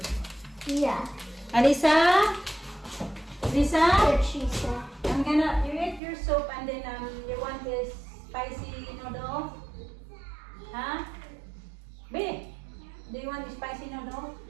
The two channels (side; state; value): left; drops out; at 6.0 s